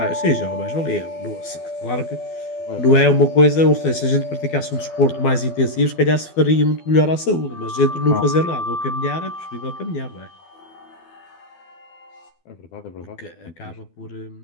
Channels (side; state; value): right; late; 12 ms